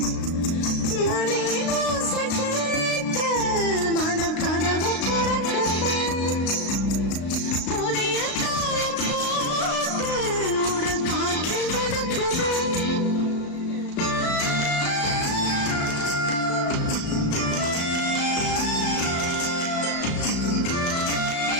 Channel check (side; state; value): right; late; 35 ms